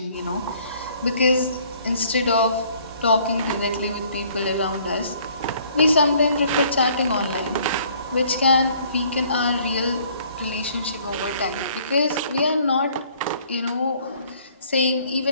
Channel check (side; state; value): both; inverted; correlation -0.59